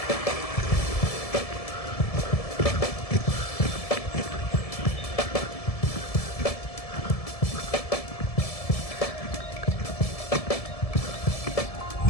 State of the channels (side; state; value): right; late; 1.7 ms